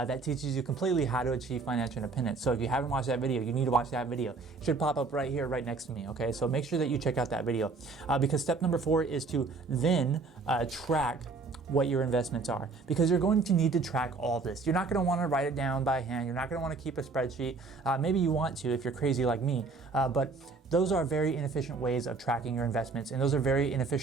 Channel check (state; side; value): quieter; left; 4.1 dB